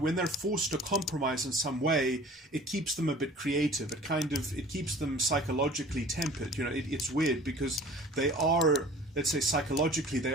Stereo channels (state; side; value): normal; both; correlation 0.46